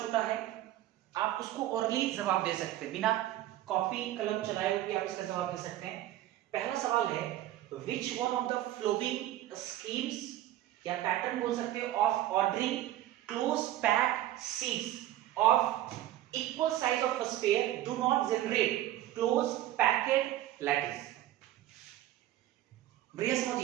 छोटा है, आप उसको ओरली जवाब दे सकते हैं, बिना कॉपी कलम चलाए हुए आप इसका जवाब दे सकते हैं। पहला सवाल है which one of the following schemes या पैटर्न बोल सकते हैं of ordering close packed sheets of equal size of a sphere do not generate close packed lattice। बढ़िया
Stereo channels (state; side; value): quieter; left; 13.8 dB